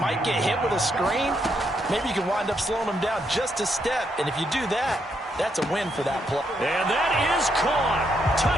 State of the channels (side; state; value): both; normal; correlation 0.77